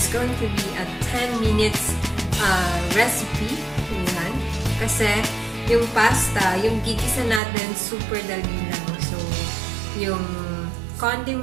going to be a 10 minutes recipe. Ayan. Kasi yung pasta, yung gigisa natin, super dali lang. So, yung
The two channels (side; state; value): left; drops out; at 7.4 s